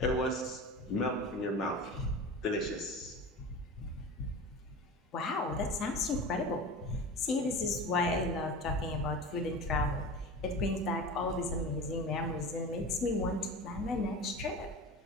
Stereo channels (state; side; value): normal; both; correlation 0.32